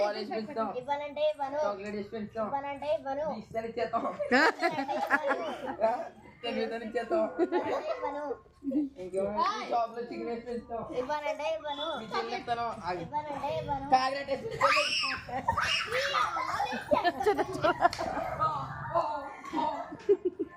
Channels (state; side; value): identical; both; correlation 1.00